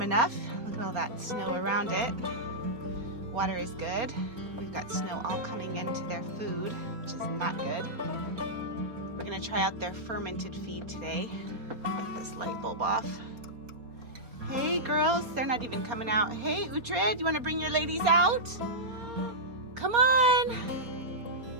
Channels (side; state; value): left; late; 4.2 ms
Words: enough. Look at all that snow around it. Water is good. We've got snow all coming into their food, which is not good. We're gonna try out their fermented feed today. Get this light bulb off. Hey girls, they're not even coming out. Hey Uhtred, you wanna bring your ladies out? Come on.